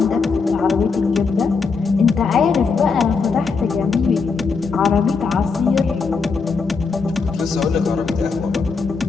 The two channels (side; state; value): right; quieter; 4.9 dB